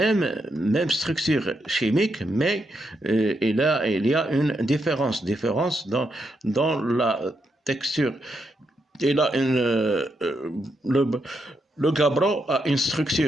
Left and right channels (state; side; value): normal; both; correlation 0.81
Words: structure chimique, mais il y a une différence dans la texture. Et là, le gabbro a une